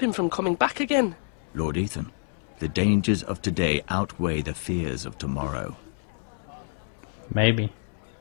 him from coming back again? Lord Ethan, the dangers of today outweigh the fears of tomorrow. Maybe.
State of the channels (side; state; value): right; silent; 60 dB below the other